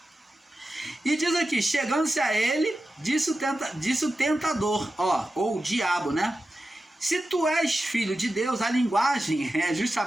E diz aqui, chegando-se a ele, disse o tentador, ou o diabo, né? Se tu és filho de Deus, a linguagem é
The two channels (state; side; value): normal; both; correlation 0.92